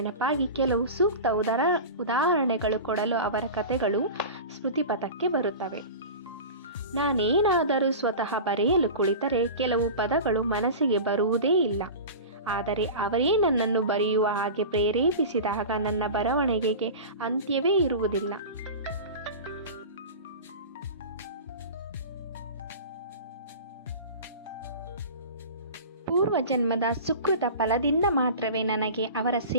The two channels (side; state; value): both; inverted; correlation -0.32